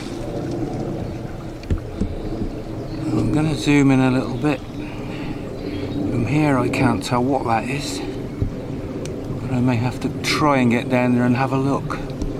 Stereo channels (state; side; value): identical; both; correlation 1.00